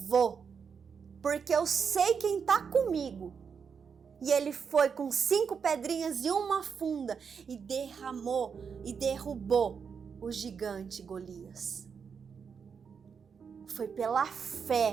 porque eu sei quem está comigo. E ele foi com 5 pedrinhas e uma funda e derramou e derrubou o gigante Golias. Foi pela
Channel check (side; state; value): left; quieter; 6.4 dB